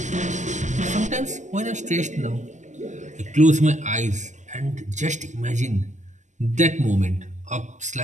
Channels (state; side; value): late; left; 0.34 ms